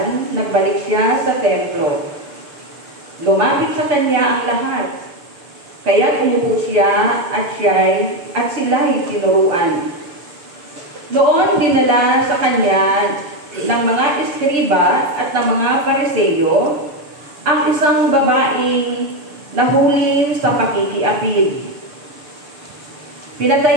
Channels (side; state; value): left; late; 6.8 ms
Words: nagbalik siya sa templo. Lumapit sa kanya ang lahat. Kaya umupo siya at sila'y tinuruan. Noon dinala sa kanya ng mga eskriba at ng mga Pariseo ang isang babaeng nahuli sa pakikiapid.